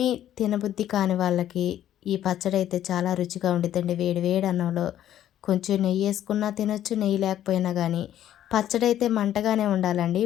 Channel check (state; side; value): quieter; right; 11.6 dB